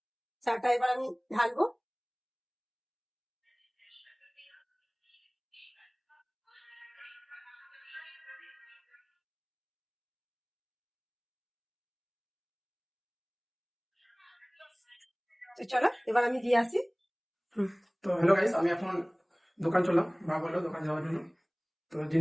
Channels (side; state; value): both; identical; correlation 1.00